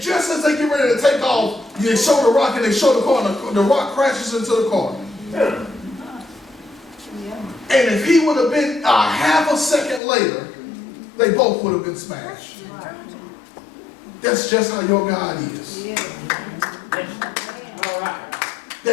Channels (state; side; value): drops out; right; at 10.0 s